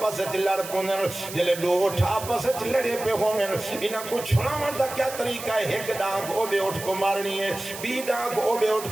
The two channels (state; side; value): noise; right; hiss, 11 dB below the sound